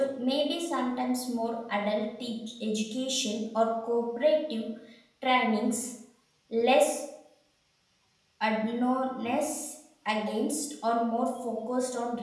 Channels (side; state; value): both; identical; correlation 1.00